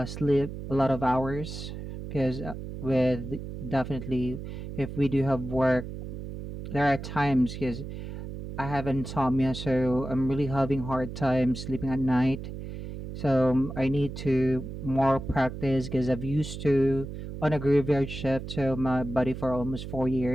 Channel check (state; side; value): noise; right; hum, 9 dB below the sound